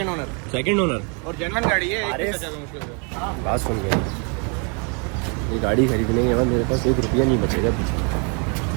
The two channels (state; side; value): quieter; left; 35.9 dB